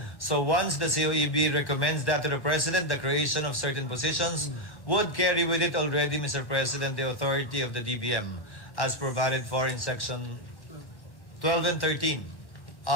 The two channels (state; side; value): late; right; 1.0 ms